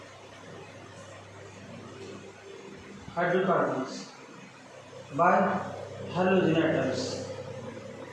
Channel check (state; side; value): identical; both; correlation 1.00